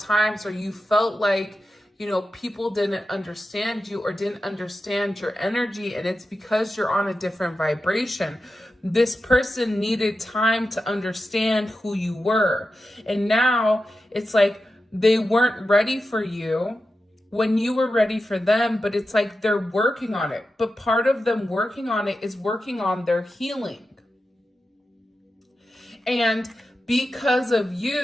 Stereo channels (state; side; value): normal; both; correlation 0.91